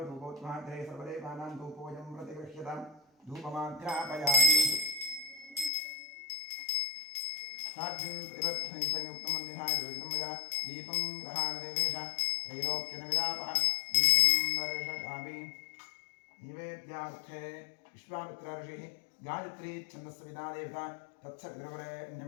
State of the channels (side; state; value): right; drops out; at 5.7 s